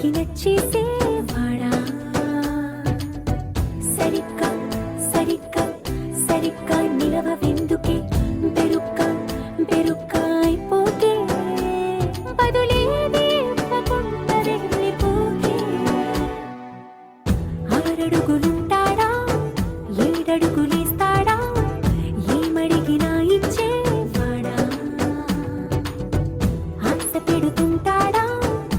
నచ్చేసేవాడా. సరిగ్గా సరిగ్గా సరిగ్గా నిలవెందుకే, బెరుక్క బెరుక్క అయిపోకే, బదులేది ఇవ్వకుండా వెళ్ళిపోకే. 6 అడుగులుంటాడా 7 అడుగులేస్తాడా ఏమడిగినా ఇచ్చేవాడా ఆశ పెడుతుంటాడా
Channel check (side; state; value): both; identical; correlation 1.00